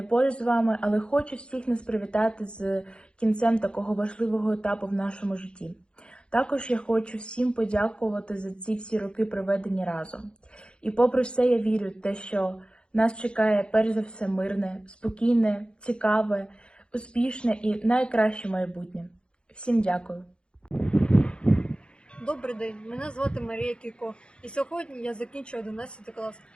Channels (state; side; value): late; right; 0.054 ms